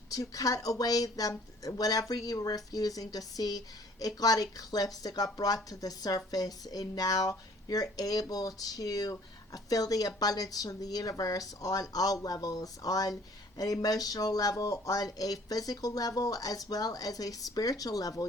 to cut away them, whatever you were refusing to see. It got eclipsed, it got brought to the surface, and now you're able to feel the abundance from the universe on all levels, on an emotional level, on a physical level, as well as a spiritual level.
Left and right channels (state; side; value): normal; both; correlation 0.55